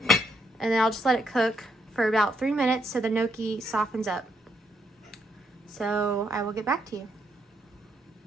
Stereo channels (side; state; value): both; normal; correlation 0.76